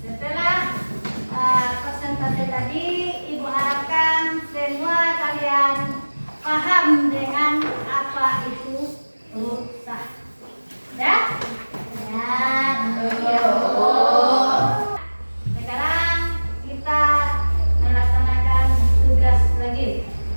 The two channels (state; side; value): inverted; both; correlation -1.00